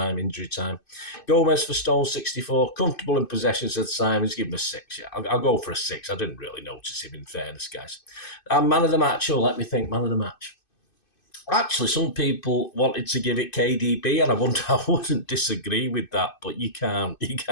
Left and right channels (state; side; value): late; right; 2.5 ms